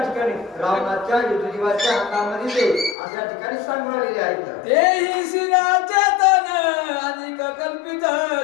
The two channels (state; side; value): drops out; right; at 3.0 s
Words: ठिकाणी रावणाच्या विधुजीवाच्या हातामध्ये ते असं या ठिकाणी सांगलेले आहेत. तेही शिराचे तन अधिक कल्पित